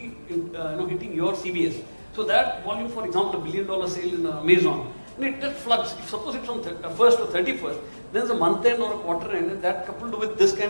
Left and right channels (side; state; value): both; inverted; correlation -1.00